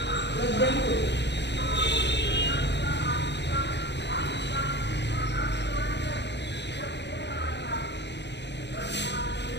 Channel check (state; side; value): late; right; 0.50 ms